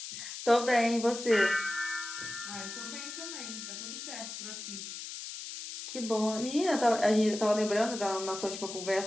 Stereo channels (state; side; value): noise; left; hiss, 9 dB below the sound